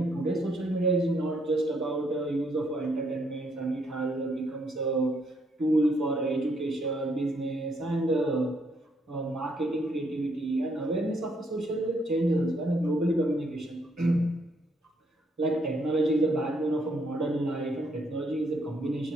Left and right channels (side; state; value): both; normal; correlation 0.72